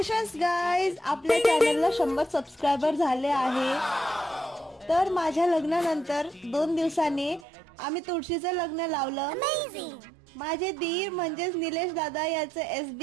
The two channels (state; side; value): drops out; left; at 7.5 s